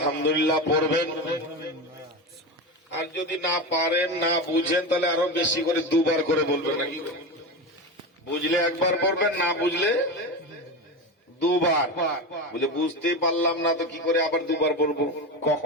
পড়বেন, আর যদি না পারেন, না বুঝেন, তাহলে আরো বেশি করে দুবার করে বলবেন। নাকি বুঝলে একবার পড়বেন, না বুঝলে দুবার। বুঝলে বুঝতেই পারলাম না তো কি করে আবার দুবার পড়বো,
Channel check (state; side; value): normal; both; correlation 0.21